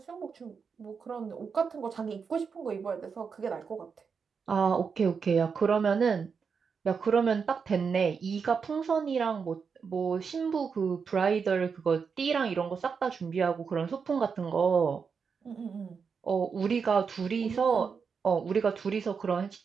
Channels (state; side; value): quieter; left; 5.9 dB